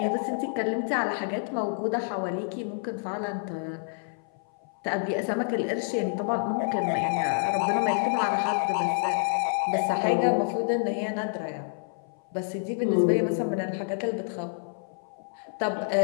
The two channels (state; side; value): silent; right; 57 dB below the other